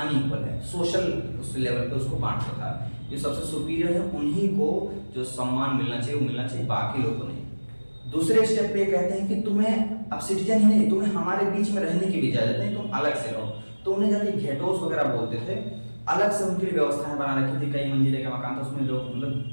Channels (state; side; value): inverted; both; correlation -1.00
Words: है, सोशल उस लेवल पे उसको बांटता था। जो सबसे सुपीरियर है उन्हीं को जो सम्मान मिलना चाहिए वो मिलना चाहिए, बाकी लोगों को नहीं। दूसरे स्टेप पे कहते हैं कि तुम्हें अब सिटीजन ही नहीं, तुम्हें हमारे बीच में रहने की भी इजाजत नहीं, तुम अलग से रहो। तो उन्हें जाके घेटोस वगैरह बोलते थे, अलग से उनके लिए व्यवस्थाएं बना रखी थी, कई मंजिले का मकान था, उसमें लोग